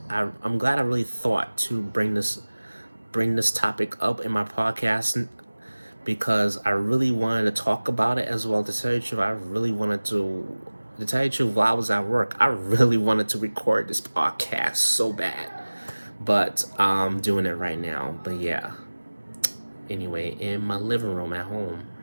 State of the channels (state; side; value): inverted; both; correlation -1.00